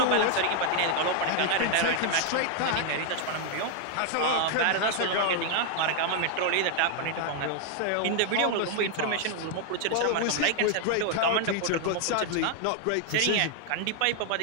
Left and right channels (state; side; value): different; both; correlation 0.00